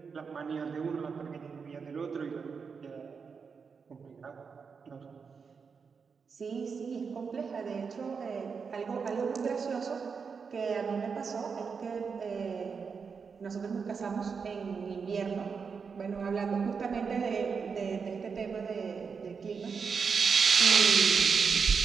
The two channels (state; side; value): quieter; left; 5.7 dB